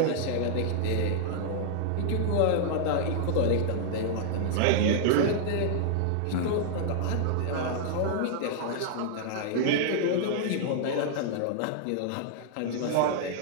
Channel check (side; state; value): both; different; correlation -0.01